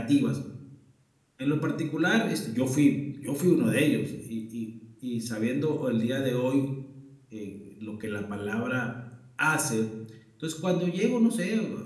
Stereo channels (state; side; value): identical; both; correlation 1.00